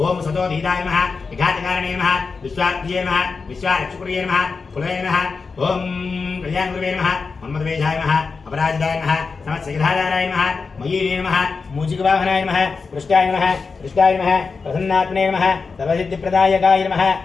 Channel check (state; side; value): quieter; right; 4.7 dB